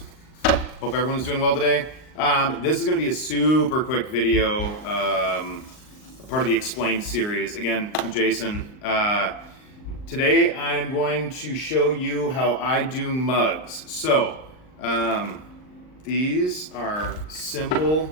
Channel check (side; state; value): right; late; 39 ms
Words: Hope everyone's doing well today. This is going to be a super quick video, part of the Explained series. Again, I'm Jason. Today I'm going to show you how I do mugs. So, these are simple.